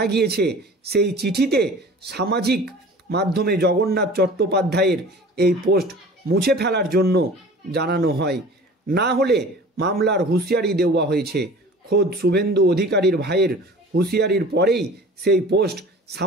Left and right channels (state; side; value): normal; both; correlation 0.42